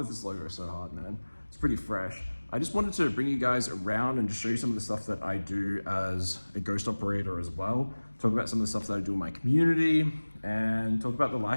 this logo so hard, man. It's pretty fresh. I just wanted to bring you guys around and just show you some of the stuff that I do as a ghost operator as well. Talk about some of the stuff that I do in my community and talk about the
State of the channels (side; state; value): both; inverted; correlation -1.00